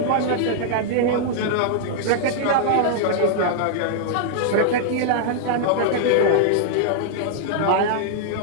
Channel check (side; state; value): both; different; correlation -0.01